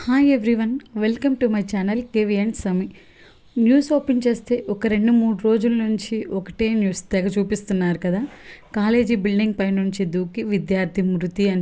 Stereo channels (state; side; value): identical; both; correlation 1.00